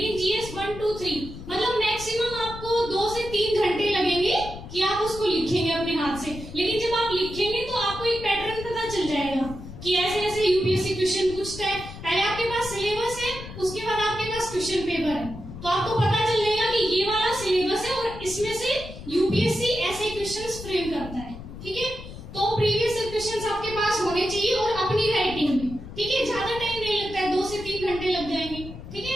जीएस 1, 2, 3 मतलब मैक्सिमम आपको 2 से 3 घंटे लगेंगे कि आप उसको लिखेंगे अपने हाथ से। लेकिन जब आप लिखेंगे तो आपको एक पैटर्न पता चल जाएगा कि ऐसे ऐसे यूपीएससी क्वेश्चन पूछता है। पहले आपके पास सिलेबस है, उसके बाद आपके पास क्वेश्चन पेपर है, तो आपको पता चल जाएगा कि ये वाला सिलेबस है और इसमें से यूपीएससी ऐसे क्वेश्चंस फ्रेम करता है, ठीक है। तो प्रीवियस क्वेश्चंस आपके पास होने चाहिए और अपनी राइटिंग में, ठीक है। ज्यादा टाइम नहीं लगता है, 2 से 3 घंटे लग जाएंगे, ठीक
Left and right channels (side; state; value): left; noise; rumble, 12 dB below the sound